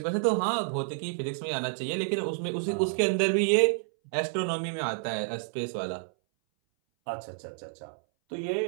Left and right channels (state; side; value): silent; left; 58 dB below the other